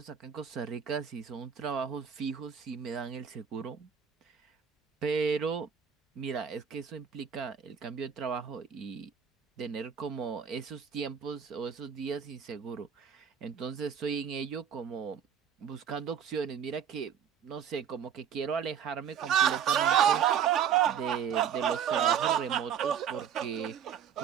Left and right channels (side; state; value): left; quieter; 8.0 dB